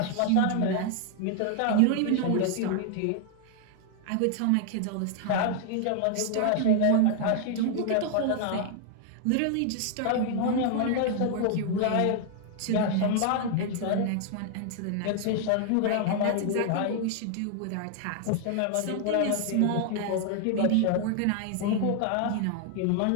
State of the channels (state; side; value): different; both; correlation 0.00